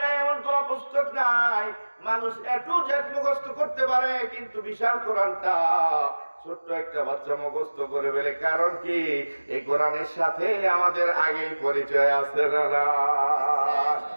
নাই, এমন কোন পুস্তক নাই মানুষ একটু জেট মুখস্থ করতে পারে, কিন্তু বিশাল কোরআনটা ছোট্ট একটা বাচ্চা মুখস্থ করে ফেলে। কারণ কি? এই কোরআনের সাথে আমাদের আগেই পরিচয় আছে না?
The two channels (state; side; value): inverted; both; correlation -1.00